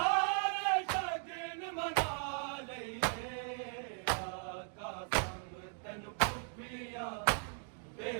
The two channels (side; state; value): left; silent; 52 dB below the other